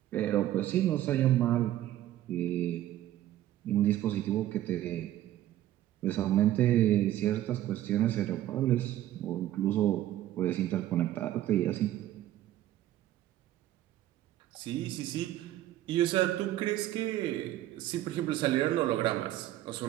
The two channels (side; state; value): left; quieter; 13.5 dB